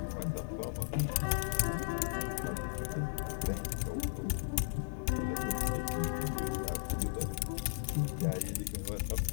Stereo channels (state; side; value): silent; right; digital silence